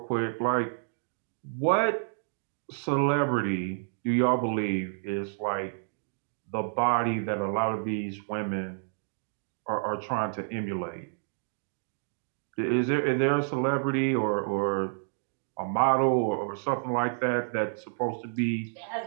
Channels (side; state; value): left; silent; digital silence